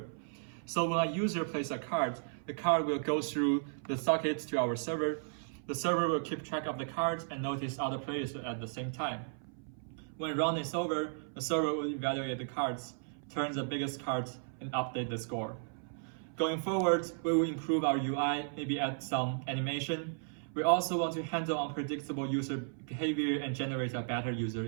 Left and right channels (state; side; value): silent; left; 55 dB below the other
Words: So when a user plays a card, the card will go through the socket to our server. The server will keep track of the cards and notice other players at the same time. When round is over, the server will evaluate the cards, turn the biggest cards, and update the score. Going forward, we will improve our UI, maybe add some animation. We also want to handle unpredictable user behavior and generate a better user